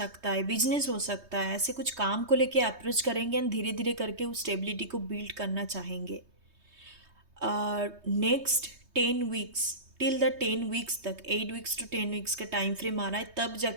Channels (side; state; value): left; late; 3.2 ms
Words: है, बिजनेस हो सकता है, ऐसे कुछ काम को लेके अप्रोच करेंगे एंड धीरे धीरे करके उस स्टेबिलिटी को बिल्ड करना चाहेंगे। Next 10 weeks, till the 10 weeks तक, 8 वीक्स to 10 वीक्स का टाइम फ्रेम आ रहा है, तब